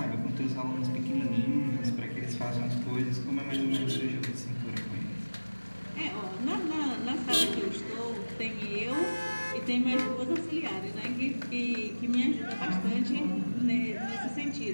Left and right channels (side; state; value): both; inverted; correlation -1.00